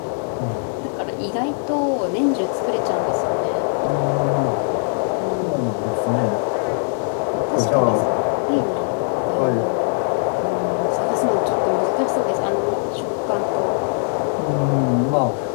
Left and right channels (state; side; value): silent; right; 65 dB below the other